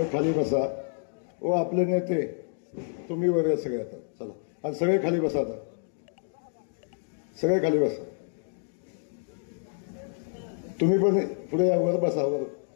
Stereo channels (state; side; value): silent; right; digital silence